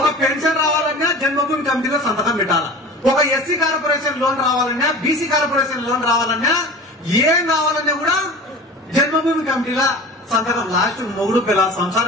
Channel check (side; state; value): both; normal; correlation 0.38